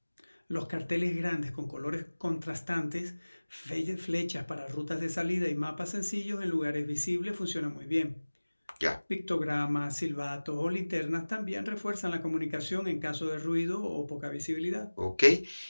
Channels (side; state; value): both; inverted; correlation -1.00